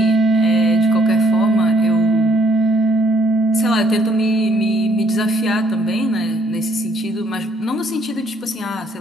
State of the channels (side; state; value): both; normal; correlation 0.66